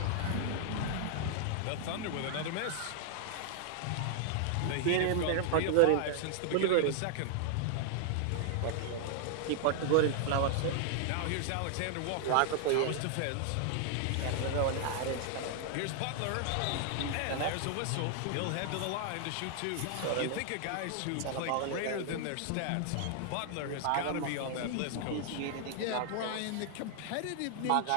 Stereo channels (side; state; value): both; different; correlation 0.00